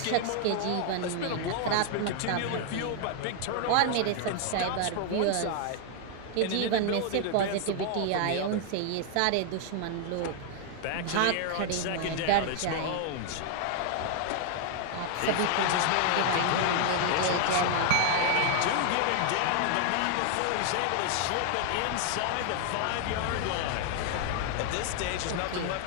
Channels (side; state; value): both; different; correlation 0.00